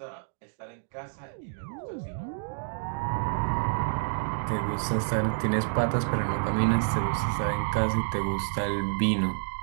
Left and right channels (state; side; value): silent; left; digital silence